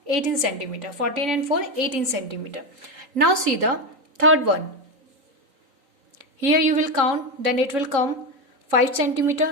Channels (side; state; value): left; late; 3.8 ms